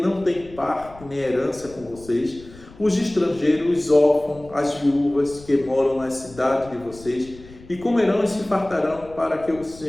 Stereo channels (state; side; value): noise; left; rumble, 20 dB below the sound